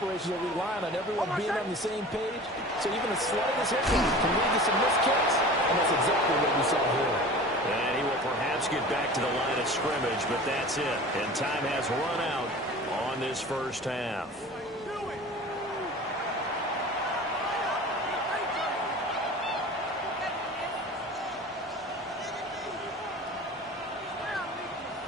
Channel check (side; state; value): both; normal; correlation 0.39